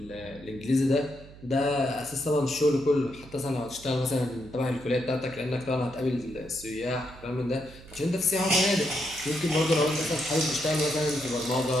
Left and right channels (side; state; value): right; noise; hum, 19 dB below the sound